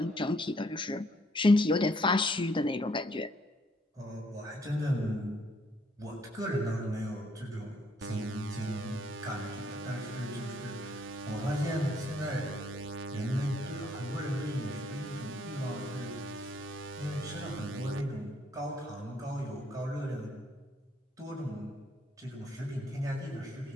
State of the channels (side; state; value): both; normal; correlation 0.68